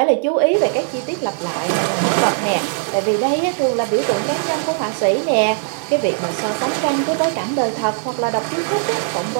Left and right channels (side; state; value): left; silent; digital silence